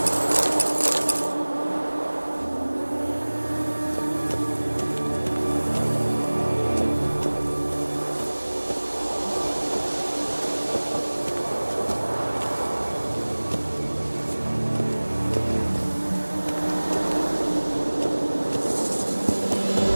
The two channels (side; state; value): both; inverted; correlation -1.00